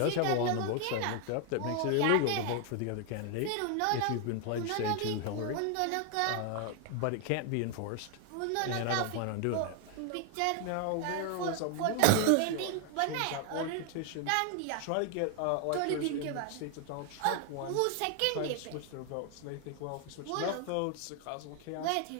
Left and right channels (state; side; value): different; both; correlation 0.00